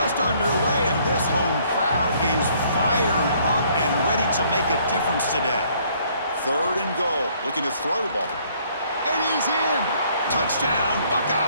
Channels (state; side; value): inverted; both; correlation -0.63